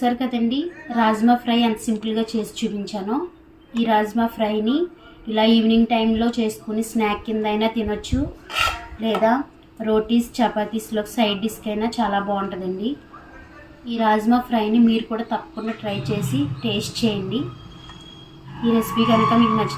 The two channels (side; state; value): both; identical; correlation 1.00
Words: కదండి, రాజ్మా ఫ్రై ఎంత సింపుల్గా చేసి చూపించానో. ఈ రాజ్మా ఫ్రైని ఇలా ఈవినింగ్ టైంలో చేసుకుని స్నాక్ కింద అయినా తినొచ్చు, లేదా రోటీస్ చపాతీస్లో సైడ్ డిష్కి అయినా చాలా బాగుంటుందండి. ఈ రాజ్మా ఫ్రైని మీరు కూడా తప్పకుండా ట్రై చేసి టేస్ట్ చేయండి. ఈ రెసిపీ కనుక మీకు